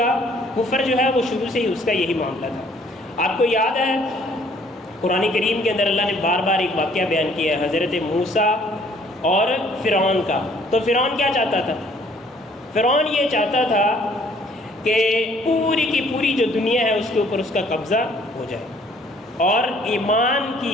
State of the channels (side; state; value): both; normal; correlation 0.60